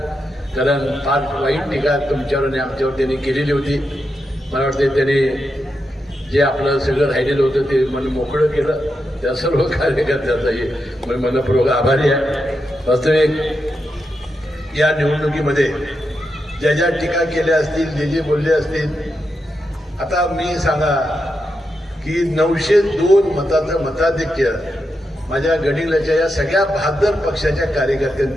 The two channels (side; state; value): both; normal; correlation 0.86